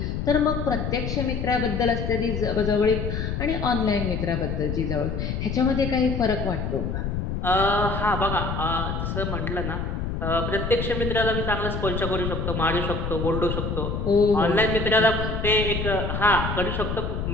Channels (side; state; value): left; noise; rumble, 3 dB below the sound